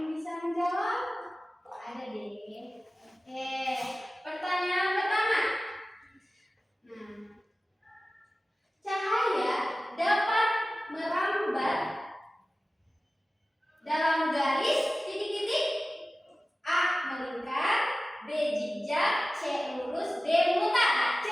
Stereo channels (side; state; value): both; normal; correlation 0.96